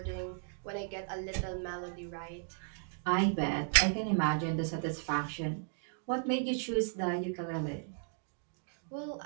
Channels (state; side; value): silent; left; digital silence